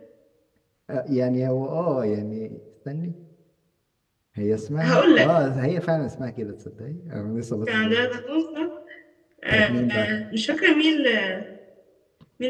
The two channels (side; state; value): both; identical; correlation 1.00